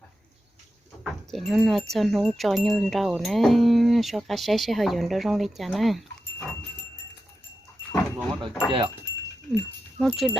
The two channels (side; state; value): both; normal; correlation 0.90